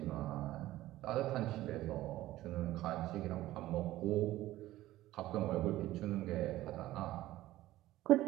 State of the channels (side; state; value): left; quieter; 15.7 dB